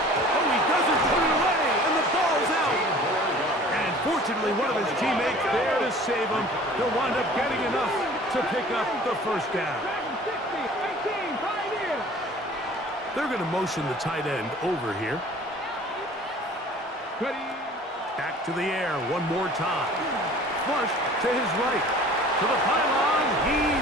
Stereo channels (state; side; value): normal; both; correlation 0.47